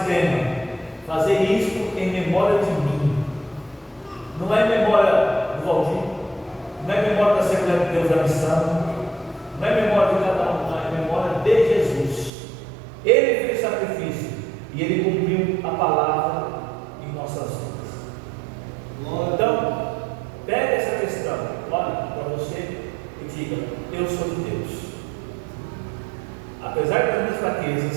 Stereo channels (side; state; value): left; drops out; at 12.3 s